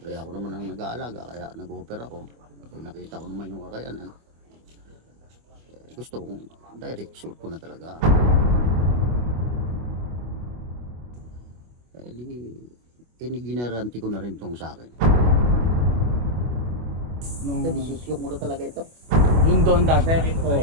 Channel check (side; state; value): left; late; 25 ms